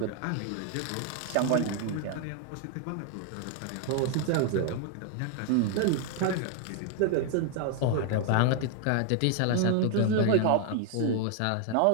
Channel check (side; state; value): both; different; correlation 0.00